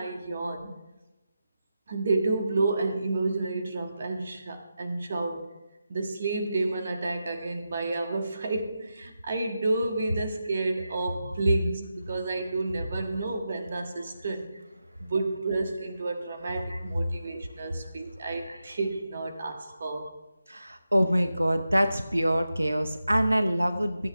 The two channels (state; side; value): inverted; both; correlation -0.89